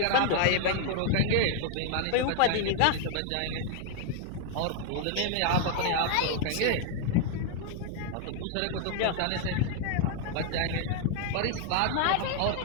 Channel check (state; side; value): different; both; correlation 0.00